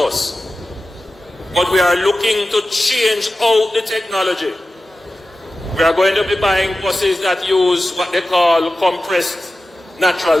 But we are looking to change out the technology. We are going to be buying buses that use what they call compressed natural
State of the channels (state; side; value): normal; both; correlation 0.94